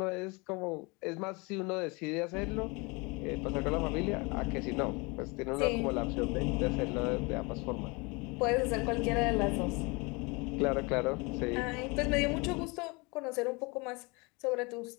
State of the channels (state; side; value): quieter; right; 27.8 dB